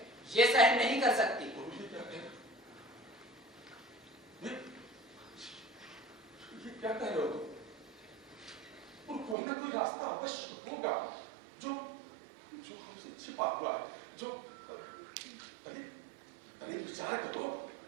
ये सहन नहीं कर सकती।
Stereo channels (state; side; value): drops out; left; at 9.3 s